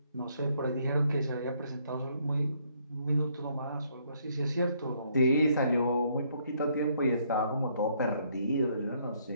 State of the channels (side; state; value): both; inverted; correlation -0.69